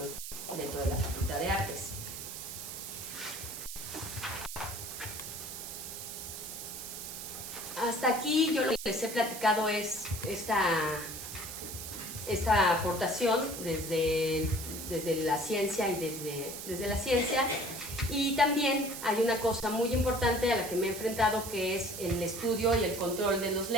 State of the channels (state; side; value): noise; right; hiss, 8 dB below the sound